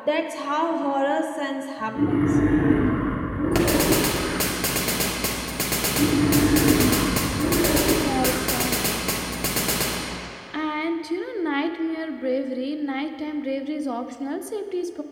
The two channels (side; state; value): both; identical; correlation 1.00